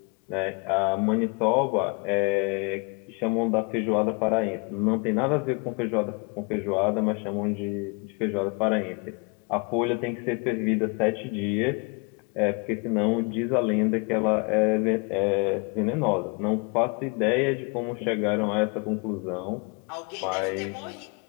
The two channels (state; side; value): quieter; right; 32.3 dB